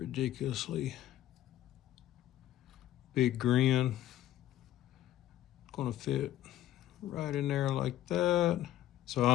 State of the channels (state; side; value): quieter; right; 13.2 dB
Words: big grin. It's going to fit right in there like that.